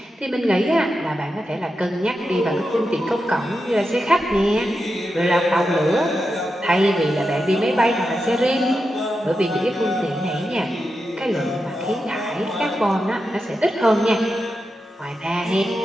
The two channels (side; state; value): both; normal; correlation 0.89